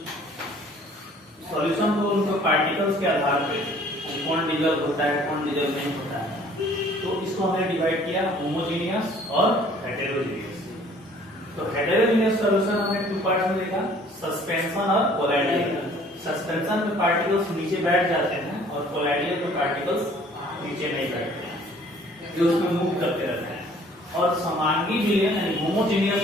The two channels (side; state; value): both; normal; correlation 0.55